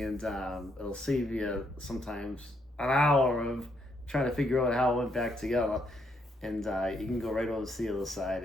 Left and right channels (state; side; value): normal; both; correlation 0.75